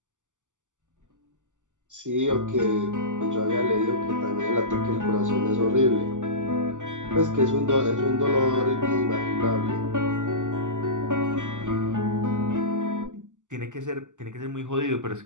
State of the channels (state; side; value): late; left; 0.86 ms